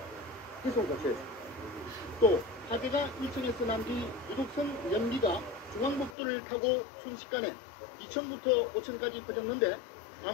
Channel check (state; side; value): drops out; right; at 6.2 s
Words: 기소 조치했습니다. 또 화재가 1층에서 난 뒤 유독성 연기가 중앙복도를 타고 순식간에 2층부터 5층까지 퍼졌는데